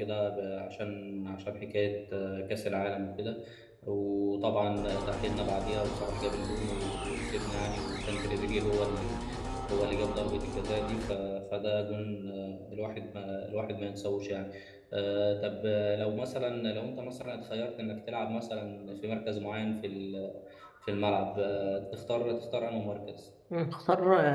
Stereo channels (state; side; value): identical; both; correlation 1.00